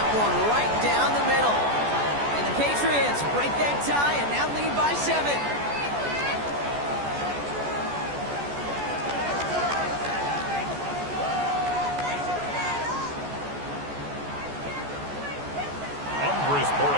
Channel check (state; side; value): late; left; 14 ms